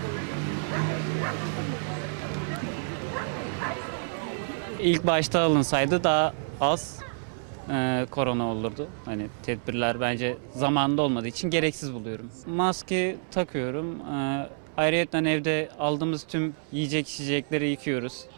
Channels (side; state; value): left; silent; 59 dB below the other